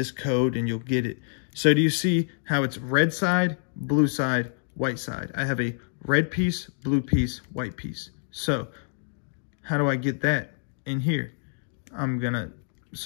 code and you'll get it. So do you see how it's red side, blue side, white side? I have a red piece, blue piece, white piece. So how do I get that in here?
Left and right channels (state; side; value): silent; right; digital silence